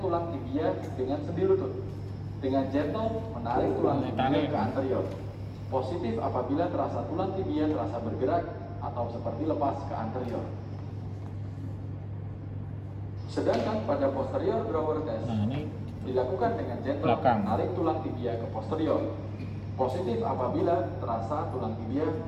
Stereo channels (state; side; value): identical; both; correlation 1.00